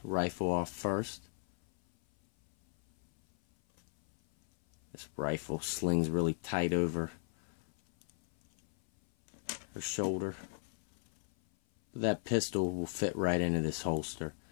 rifle off first. This rifle slings really tight over her shoulder. That pistol will fit right into this holster.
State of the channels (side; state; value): right; silent; 54 dB below the other